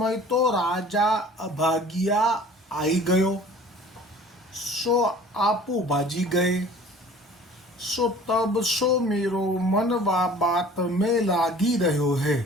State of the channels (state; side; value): normal; both; correlation 0.47